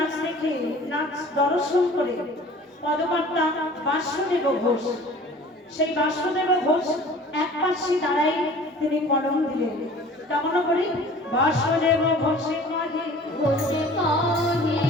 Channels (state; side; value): normal; both; correlation 0.46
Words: দেখে, নাচ দর্শন করে পদকর্তা বাসুদেব ঘোষ, সেই বাসুদেব ঘোষ এক পাশে দাঁড়াই তিনি কলম দিলেন। কেমন করি? বাসুদেব ঘোষে কাজে ঘোষে কাহে